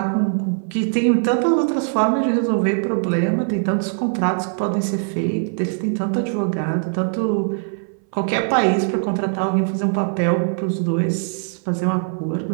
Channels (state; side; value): silent; left; 61 dB below the other